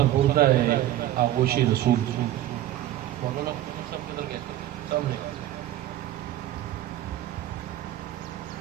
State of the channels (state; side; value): quieter; left; 13.5 dB